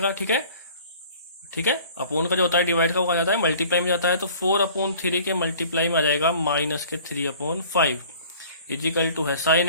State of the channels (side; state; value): both; inverted; correlation -0.49